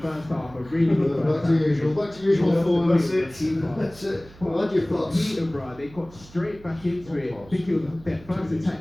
half. A really good first half. Back to usual form. That's it. What your thoughts? Peterborough, they got straight back into it. I think it was their first attack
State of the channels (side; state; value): right; noise; hum, 21 dB below the sound